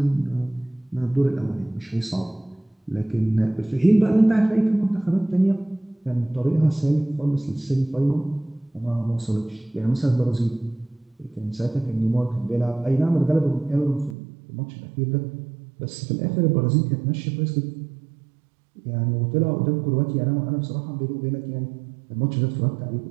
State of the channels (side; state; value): left; drops out; at 14.2 s